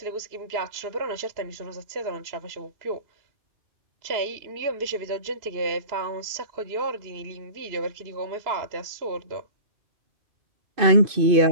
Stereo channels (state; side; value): late; left; 2.5 ms